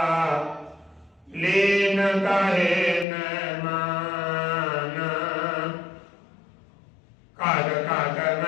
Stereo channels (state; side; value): drops out; right; at 3.1 s